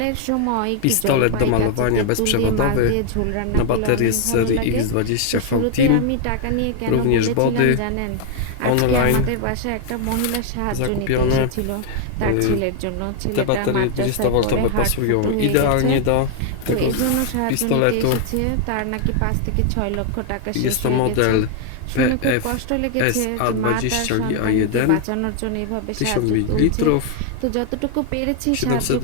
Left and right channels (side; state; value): both; different; correlation 0.00